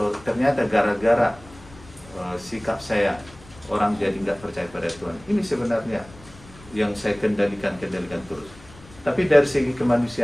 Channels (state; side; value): noise; left; rumble, 22 dB below the sound